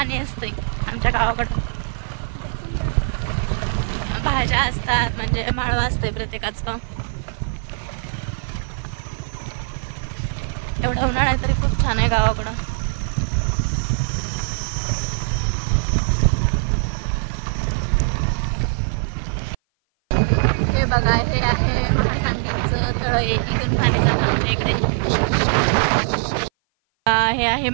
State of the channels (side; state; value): left; silent; 56 dB below the other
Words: असतंय आमच्या गावाकडं. भाज्या असतात म्हणजे माळवा असतंय प्रत्येकाचं. एवढा उन्हाळा तरी खूप छान आहे गावाकडं. हे बघा हे आहे महासांगवीचं तळ. इथून पाणी जातं आमच्या इकडे. हे आहे